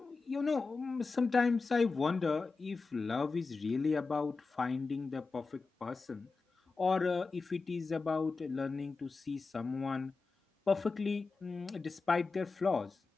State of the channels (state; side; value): quieter; right; 4.2 dB